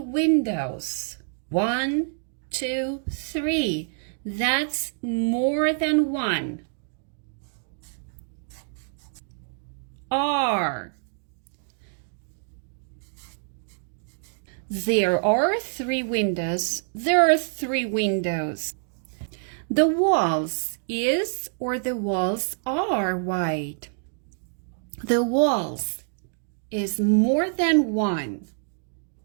1, 2, 3. That's more than 1. Are. There are 3 windows. There are 3 windows. The walls is or the walls are white. The walls is more than 1.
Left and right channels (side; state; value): left; silent; digital silence